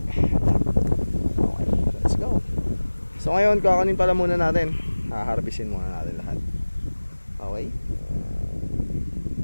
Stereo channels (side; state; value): both; inverted; correlation -1.00